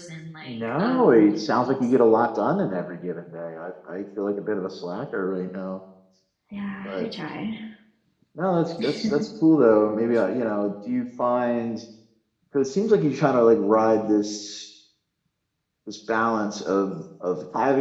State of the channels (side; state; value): both; identical; correlation 1.00